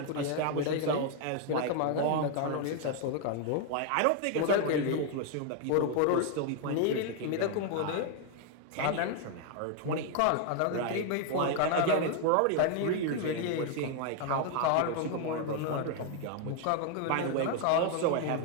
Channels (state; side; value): different; both; correlation 0.00